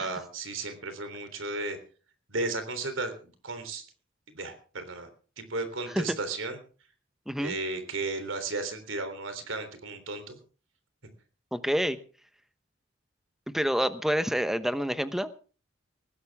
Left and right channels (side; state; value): both; normal; correlation 0.56